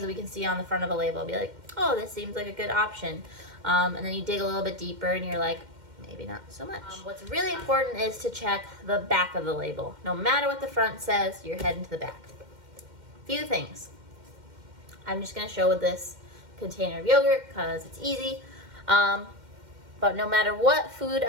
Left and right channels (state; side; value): late; left; 2.1 ms